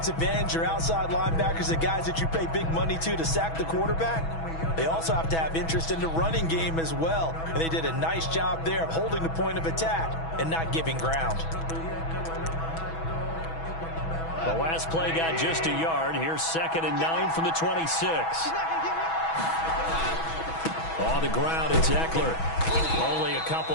ends, your outside linebackers, the guys that you pay big money to sack the quarterback, they also have to have interest in the running game as well. And they did a nice job there of holding the point of attack and not giving ground. The last play got just a yard. Here's 2nd and 9 from the 26. On the ground, it's Eckler. Only a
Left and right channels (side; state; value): right; late; 6.1 ms